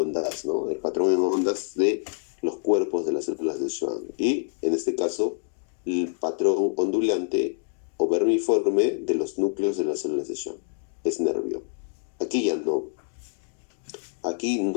¿no? El patrón en ondas de los cuerpos de las células de Schwann. Y en este caso, el patrón ondulante o vermiforme de los núcleos de las células de Schwann. Es nervio. Aquí ya no. Aquí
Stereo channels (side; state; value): right; silent; digital silence